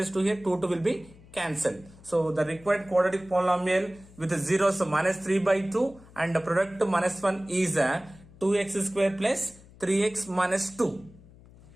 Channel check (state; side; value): noise; left; hum, 23 dB below the sound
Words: 2 here, 2 will be cancelled. So the required quadratic polynomial with the zeros, so minus 3 by 2 and the product minus 1 is 2x square plus 3x minus 2.